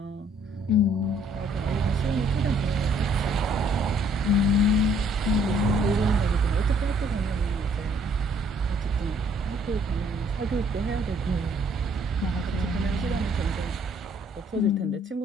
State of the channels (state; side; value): normal; both; correlation 0.63